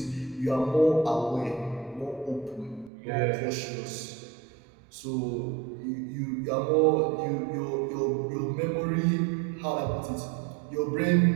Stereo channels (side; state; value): left; drops out; at 2.9 s